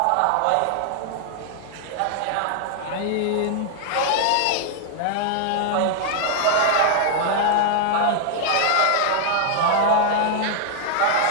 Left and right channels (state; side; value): different; both; correlation 0.00